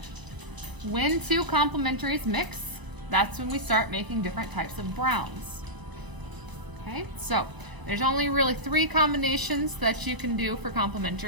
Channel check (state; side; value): late; left; 1.0 ms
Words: When 2 complementaries mix, that's when we start making different types of browns. Okay, so there's only really 3 combinations that you can do for